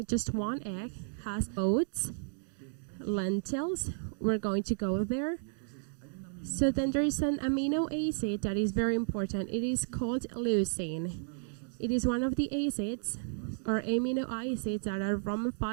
just one egg, has oats, lentils. We're going to go there. So then there is an amino acid that is very important. It is called leucine. It is one of the acids or amino acids that are from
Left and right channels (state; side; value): silent; left; digital silence